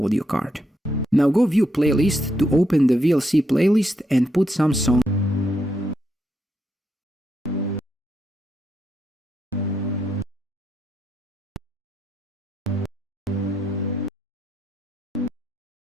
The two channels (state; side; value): normal; both; correlation 0.80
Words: card. Now go view playlist to open the VLC playlist and put some songs.